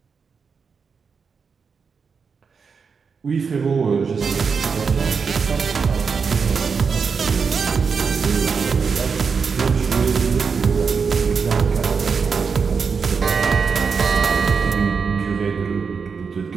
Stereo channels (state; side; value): quieter; left; 5.6 dB